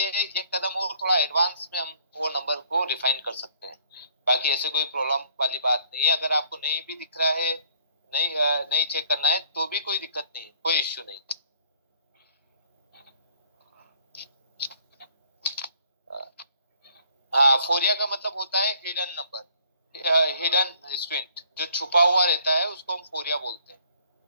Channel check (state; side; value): inverted; both; correlation -0.61